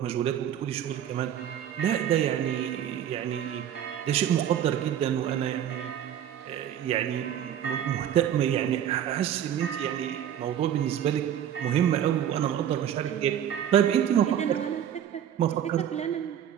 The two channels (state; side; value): quieter; left; 10.0 dB